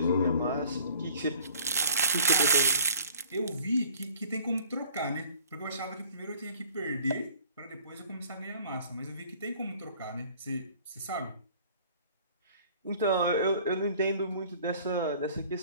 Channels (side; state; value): both; inverted; correlation -0.51